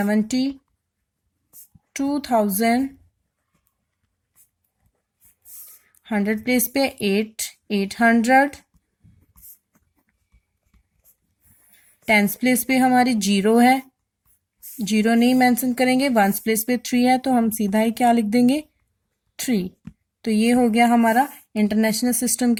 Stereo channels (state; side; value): identical; both; correlation 1.00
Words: 100 प्लेस पे 800। 10 प्लेस पे हमारी 0 है, 0 नहीं मेंशन करेंगे। 1 प्लेस पे 3 है, तो हम सीधा ही क्या लिख देंगे 3। तो ये हो गया हमारा इंटरनेशनल सिस्टम